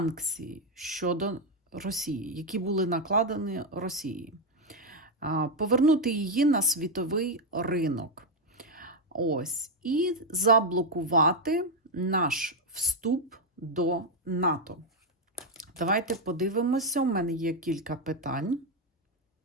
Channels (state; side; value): normal; both; correlation 0.04